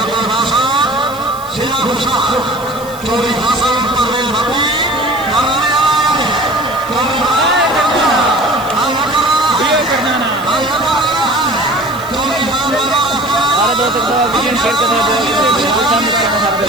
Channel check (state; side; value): noise; right; hiss, 19 dB below the sound